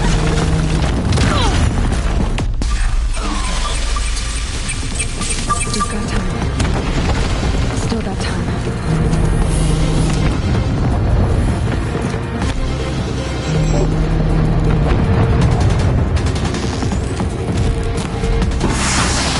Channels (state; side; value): identical; both; correlation 1.00